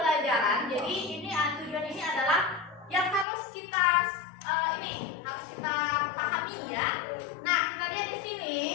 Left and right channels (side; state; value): right; drops out; at 3.2 s